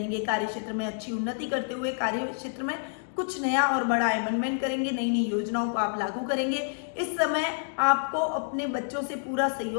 कार्य क्षेत्र में अच्छी उन्नति करते हुए कार्य क्षेत्र में कुछ नया और बड़ा अमेंडमेंट करेंगे। नई नई योजनाओं को आप लागू करेंगे। इस समय आपको अपने बच्चों से पूरा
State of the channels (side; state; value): right; silent; digital silence